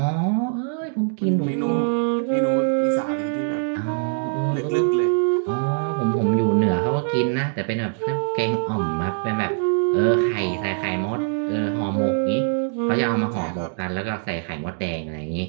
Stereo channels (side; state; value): left; silent; 63 dB below the other